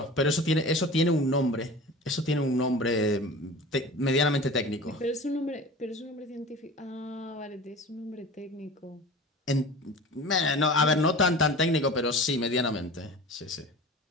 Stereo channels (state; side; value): normal; both; correlation 0.37